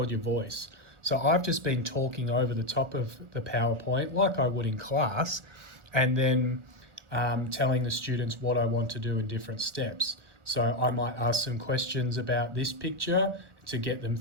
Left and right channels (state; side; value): late; left; 1.4 ms